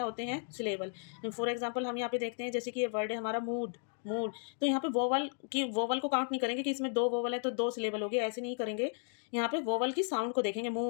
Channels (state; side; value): silent; right; 55 dB below the other